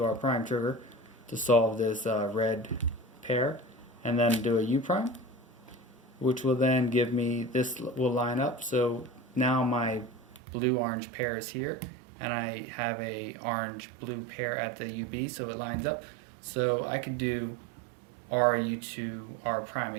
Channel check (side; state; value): left; drops out; at 10.4 s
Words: R prime trigger to solve this red pair, and then do a U prime, which will then give me, this will line up. So now my blue-orange pair is here, and I have a orange-blue pair at the UB, so it lines up. So I could do R U2 R prime